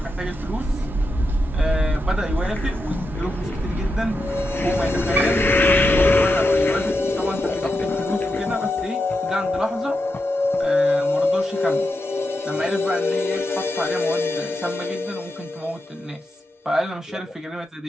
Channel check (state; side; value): normal; both; correlation 0.87